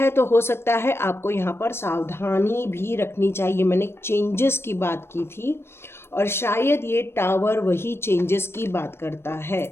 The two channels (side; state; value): right; late; 0.12 ms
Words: तो हो सकता है आपको यहाँ पर सावधानी भी रखनी चाहिए। मैंने चेंजेस की बात की थी और शायद ये टावर वही चेंजेस की बात करता है।